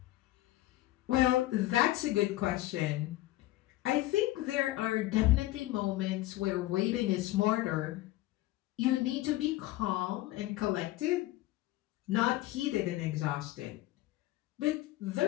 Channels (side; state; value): right; quieter; 16.9 dB